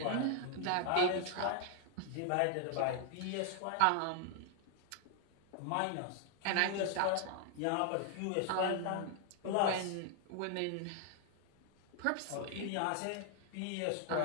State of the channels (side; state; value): both; different; correlation 0.00